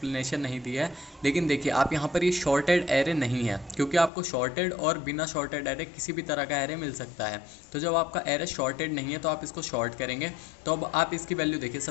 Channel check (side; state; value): right; drops out; at 4.1 s